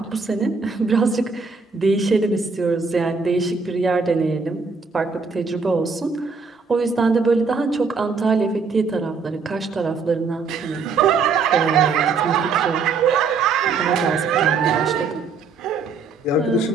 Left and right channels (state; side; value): quieter; left; 4.8 dB